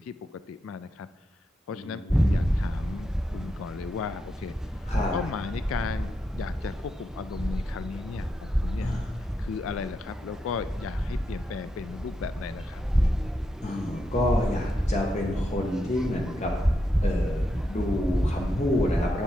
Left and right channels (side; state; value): both; normal; correlation 0.84